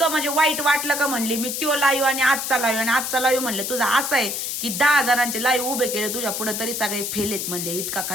म्हणजे वाईट वाटलं का म्हणली मी तो लाईव्ह आणि आजचा लाईव्ह म्हणलं तुझा असं आहे की 10 जणांचे लाईव्ह उभे केले तुझ्या पुढे तरी सगळे फेलेत म्हणले. इतका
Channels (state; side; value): noise; left; hiss, 3 dB below the sound